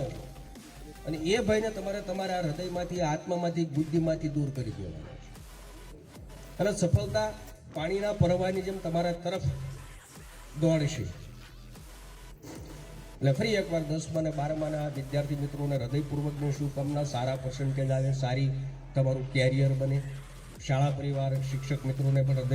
છો અને એ ભયને તમારે તમારા હૃદયમાંથી, આત્મામાંથી, બુદ્ધિમાંથી દૂર કરી દેવાનો છે. અને સફળતા પાણીના પ્રવાહની જેમ તમારા તરફ દોડશે. એટલે ફરી એકવાર 10મા અને 12માના વિદ્યાર્થી મિત્રોને હૃદયપૂર્વકની શુભકામના. સારા પર્સન્ટેજ આવે, સારી તમારું કેરિયર બને. શાળા પરિવાર, શિક્ષક મિત્રોને પણ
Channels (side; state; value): both; identical; correlation 1.00